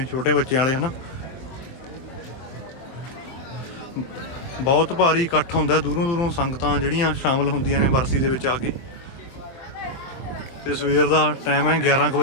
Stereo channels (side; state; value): right; late; 23 ms